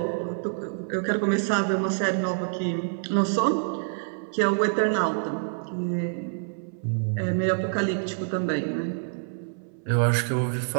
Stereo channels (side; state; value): left; silent; 58 dB below the other